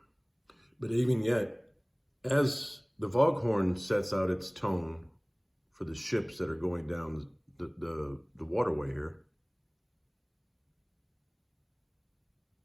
But even yet, as the foghorn sets out its tone for the ships that are going down the waterway here,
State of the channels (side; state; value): both; identical; correlation 1.00